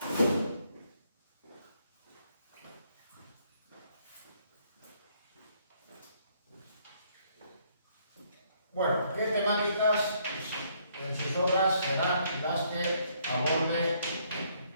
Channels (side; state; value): both; inverted; correlation -0.68